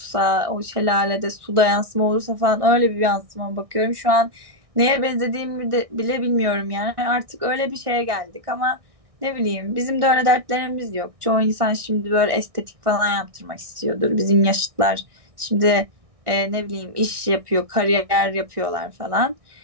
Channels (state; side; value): late; left; 1.6 ms